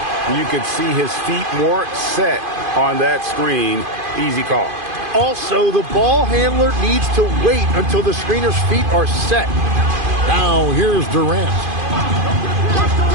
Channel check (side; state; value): left; late; 2.5 ms